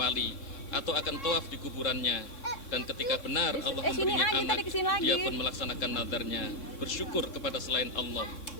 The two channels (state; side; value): late; right; 3.7 ms